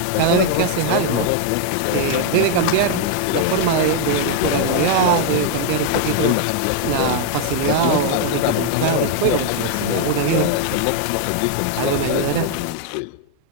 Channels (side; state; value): both; different; correlation 0.00